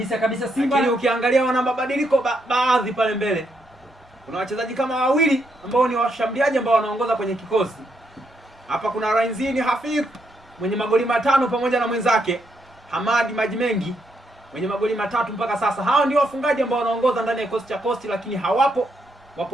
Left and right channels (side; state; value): both; normal; correlation 0.78